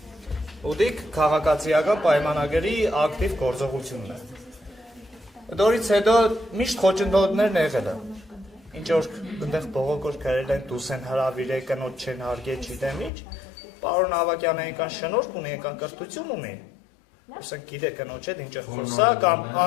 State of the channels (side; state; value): right; drops out; at 13.1 s